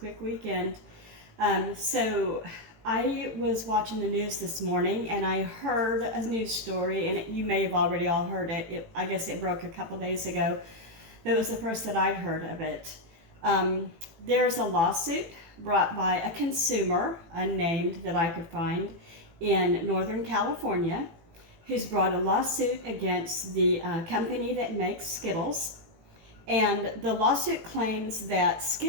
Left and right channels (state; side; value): late; left; 18 ms